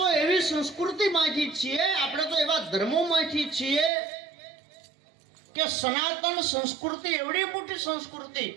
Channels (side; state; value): left; drops out; at 3.9 s